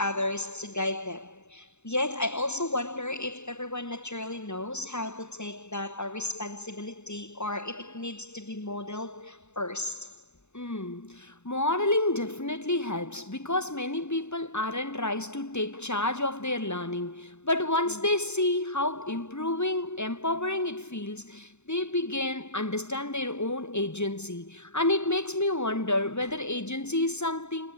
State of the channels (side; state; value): right; late; 0.82 ms